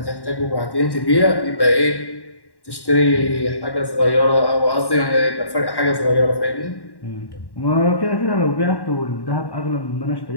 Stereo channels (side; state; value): right; late; 1.1 ms